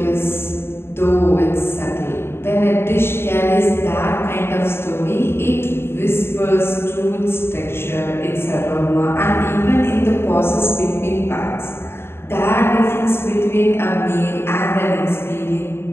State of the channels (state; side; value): late; right; 0.12 ms